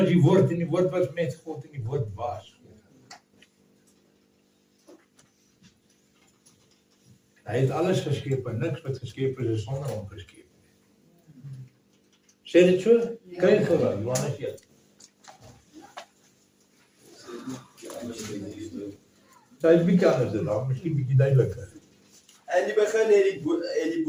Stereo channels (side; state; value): both; identical; correlation 1.00